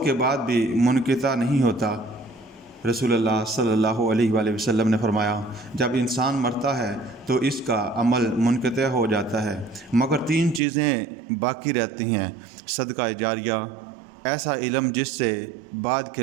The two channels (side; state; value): left; drops out; at 10.6 s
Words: کے بعد بھی منقطع نہیں ہوتا۔ رسول اللہ صلی اللہ علیہ وآلہ وسلم نے فرمایا، جب انسان مرتا ہے تو اس کا عمل منقطع ہو جاتا ہے مگر 3 چیزیں باقی رہتی ہیں: صدقہ جاریہ، ایسا علم جس سے بعد